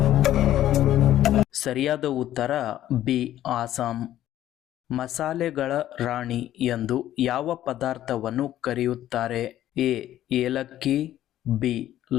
ಸರಿಯಾದ ಉತ್ತರ ಬಿ. ಆಸಾಂ. ಮಸಾಲೆಗಳ ರಾಣಿ ಎಂದು ಯಾವ ಪದಾರ್ಥವನ್ನು ಕರೆಯುತ್ತಾರೆ? ಎ. ಏಲಕ್ಕಿ, ಬಿ.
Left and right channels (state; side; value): quieter; right; 12.8 dB